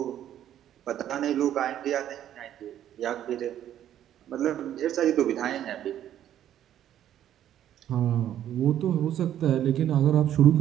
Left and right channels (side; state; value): left; quieter; 11.2 dB